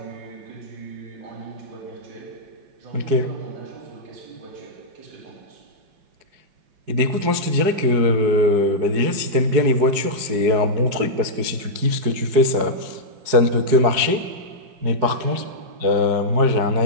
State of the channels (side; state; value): left; late; 4.8 ms